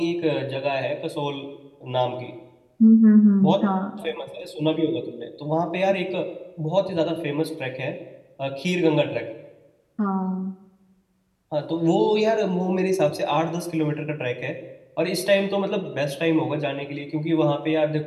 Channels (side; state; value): both; identical; correlation 1.00